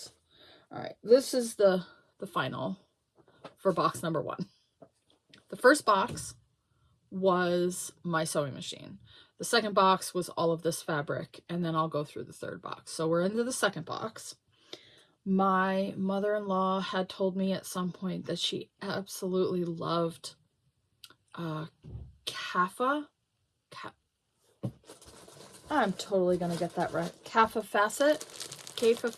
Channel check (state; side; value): identical; both; correlation 1.00